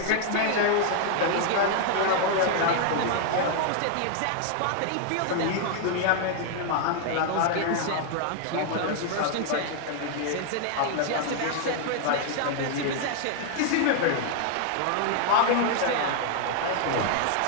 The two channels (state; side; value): different; both; correlation 0.00